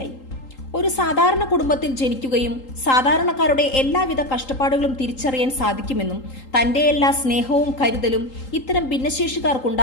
ഒരു സാധാരണ കുടുംബത്തിൽ ജനിക്കുകയും സാധാരണക്കാരുടെ എല്ലാവിധ കഷ്ടപ്പാടുകളും തിരിച്ചറിയാൻ സാധിക്കുമെന്നും തന്റെ എല്ലാ സ്നേഹവും കരുതലും ഇത്തരം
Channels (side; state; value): right; late; 3.8 ms